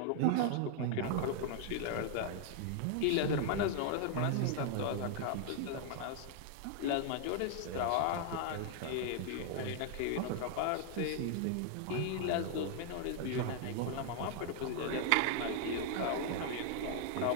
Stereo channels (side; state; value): both; different; correlation 0.00